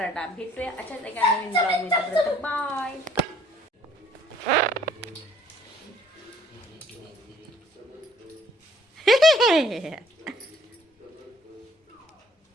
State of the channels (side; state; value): both; normal; correlation 0.59